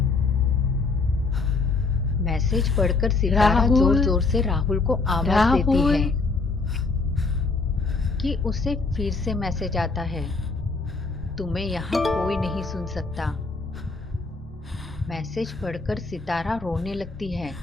मैसेज पढ़कर सितारा जोर जोर से राहुल को आवाज देती है कि उसे फिर से मैसेज आता है, तुम्हें यहाँ कोई नहीं सुन सकता। मैसेज पढ़कर सितारा रोने लगती है।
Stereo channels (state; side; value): quieter; right; 3.9 dB